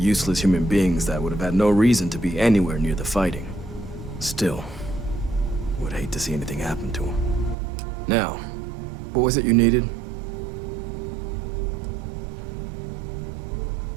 human beings that would have had no reason to be anywhere near the fighting. Still, would hate to see anything happen to them. Now, what was it you needed?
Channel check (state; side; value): drops out; left; at 7.6 s